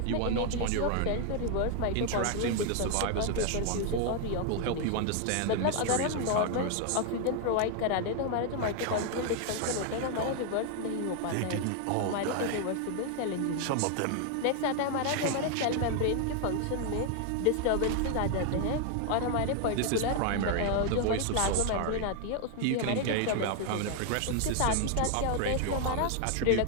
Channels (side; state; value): both; different; correlation 0.00